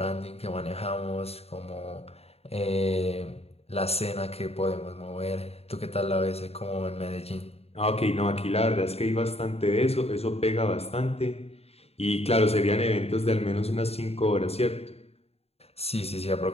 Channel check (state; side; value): late; right; 0.29 ms